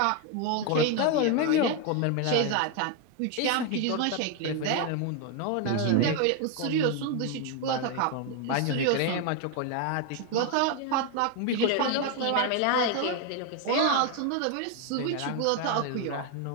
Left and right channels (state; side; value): different; both; correlation 0.01